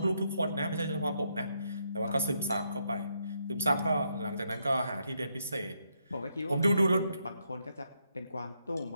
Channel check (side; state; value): both; inverted; correlation -0.78